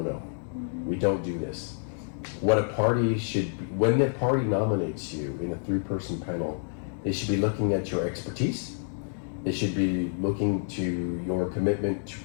We don't do this. What a party should be, when the party nominates you in a three-person panel, they should be looking at your expertise. They should be looking to your commitment to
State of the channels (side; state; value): right; silent; digital silence